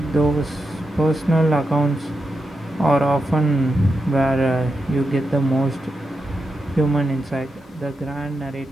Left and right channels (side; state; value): both; normal; correlation 0.87